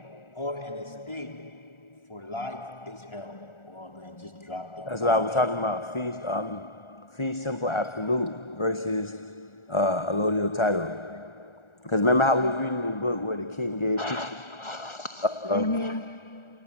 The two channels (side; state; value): right; late; 1.4 ms